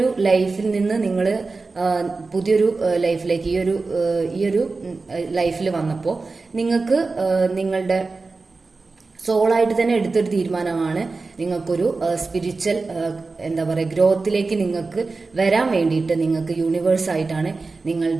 ലൈഫിൽ നിന്ന് നിങ്ങൾ പുതിയൊരു ലൈഫിലേക്ക് ഈ ഒരു ലൈഫിൽ വന്നപ്പോൾ നിങ്ങൾക്ക് നിങ്ങളുടെ സോളായിട്ട് തന്നെ എടുത്തൊരു തീരുമാനമാണ് നിങ്ങൾക്കൊരു സ്പിരിച്വൽ എന്താ പറയുക ഗ്രോത്തിലേക്ക് നിങ്ങൾക്ക് വരാൻ വേണ്ടിയിട്ട് നിങ്ങൾക്ക് യൂണിവേഴ്സ് ആയിട്ടാണ്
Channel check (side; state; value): left; quieter; 3.9 dB